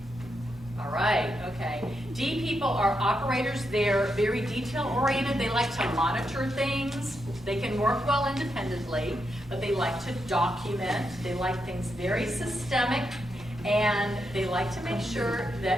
All right, okay. D people are operators. They're very detail-oriented. They like to monitor things. They can work well independently, but they like to document. They like things very systemic, and they like to make sure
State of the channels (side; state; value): both; normal; correlation 0.83